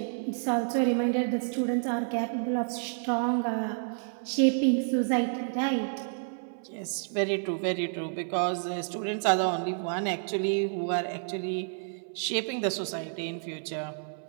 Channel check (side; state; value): left; silent; 58 dB below the other